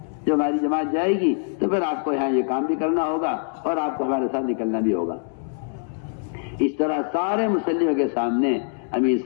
جب ہماری جماعت جائے گی تو پھر آپ کو یہاں یہ کام بھی کرنا ہوگا اور آپ کو ہمارے ساتھ نکلنا بھی ہوگا. اس طرح سارے مسلموں کے سامنے امیر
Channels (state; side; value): silent; right; digital silence